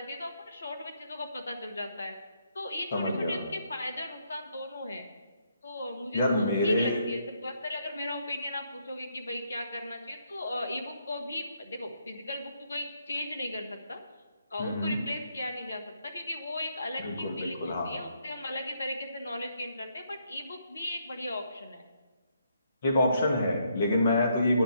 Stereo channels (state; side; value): inverted; both; correlation -0.74